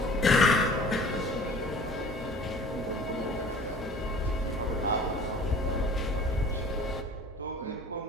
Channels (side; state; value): both; normal; correlation 0.47